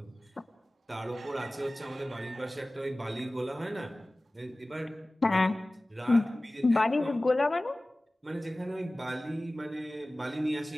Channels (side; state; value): both; normal; correlation 0.97